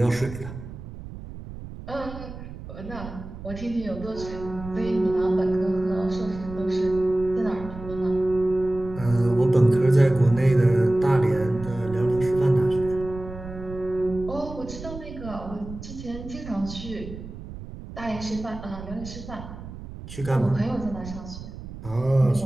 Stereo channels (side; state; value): right; noise; rumble, 12 dB below the sound